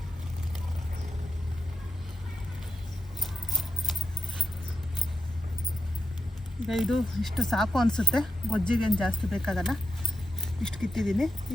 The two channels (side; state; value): both; normal; correlation 0.89